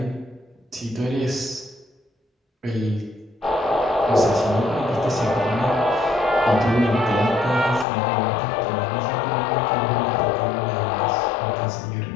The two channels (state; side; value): drops out; right; at 7.9 s